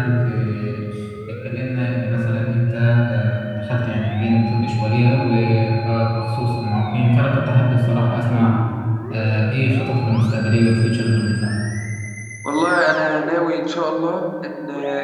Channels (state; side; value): identical; both; correlation 1.00